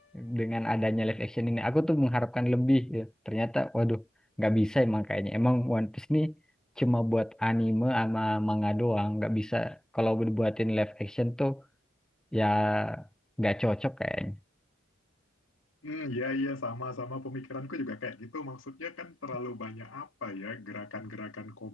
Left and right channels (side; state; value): both; normal; correlation 0.94